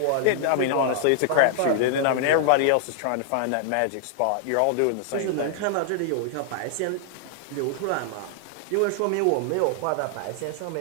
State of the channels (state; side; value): different; both; correlation -0.01